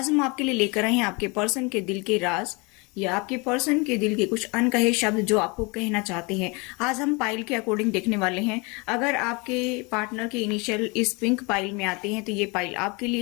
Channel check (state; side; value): quieter; right; 28.5 dB